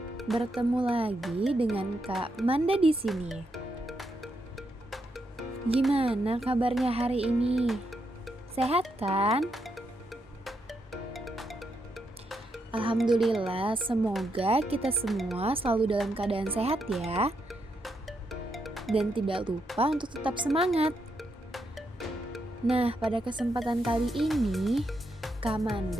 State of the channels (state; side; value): normal; both; correlation 0.81